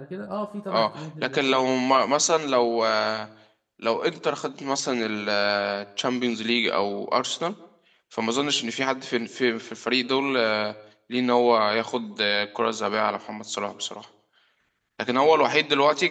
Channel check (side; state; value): both; identical; correlation 1.00